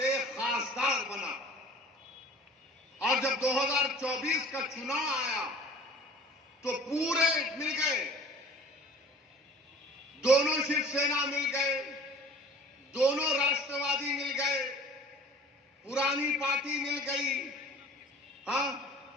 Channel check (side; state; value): both; normal; correlation 0.46